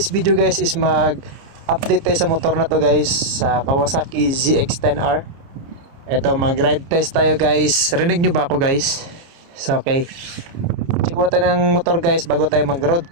video guys is mag-update tayo sa motor na to guys, sa Kawasaki ZX-10R. Ito, mag-ride test tayo guys. Rinig nyo ba ako guys? So okay, check mo tayo ng motor guys bago tayo mag-road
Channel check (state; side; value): late; left; 29 ms